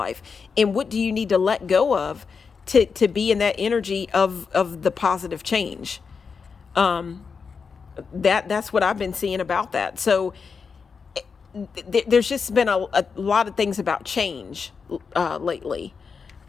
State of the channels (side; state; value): right; quieter; 5.5 dB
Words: And what do you need to let go of to be in that energy of the positive change? That's what I've been seeing about that. So there's just been a lot of things about change lately.